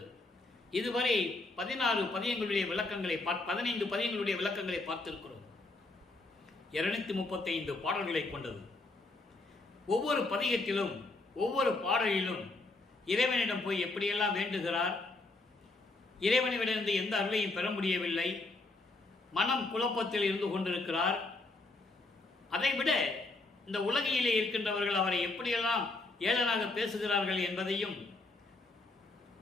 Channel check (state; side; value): quieter; right; 3.2 dB